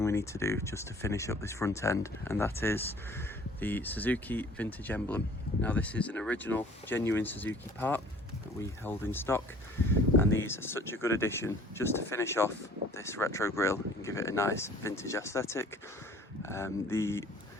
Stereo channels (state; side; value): normal; both; correlation 0.52